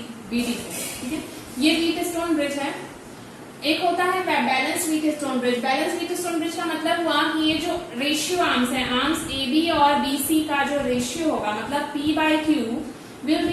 से। ठीक है, ये व्हीटस्टोन ब्रिज है। एक होता है balance Wheatstone bridge. Balance Wheatstone bridge का मतलब हुआ कि ये जो रेशियो आर्म्स है, आर्म्स AB और BC का जो रेशियो होगा, मतलब P/Q will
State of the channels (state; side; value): identical; both; correlation 1.00